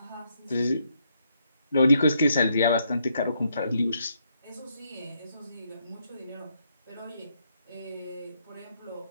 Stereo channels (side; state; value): both; inverted; correlation -0.75